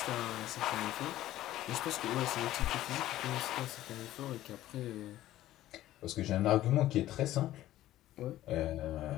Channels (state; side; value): quieter; right; 14.3 dB